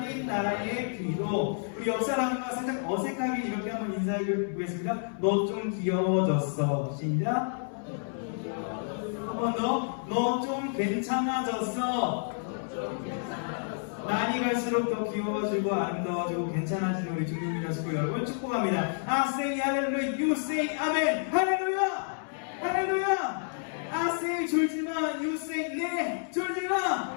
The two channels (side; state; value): right; silent; 58 dB below the other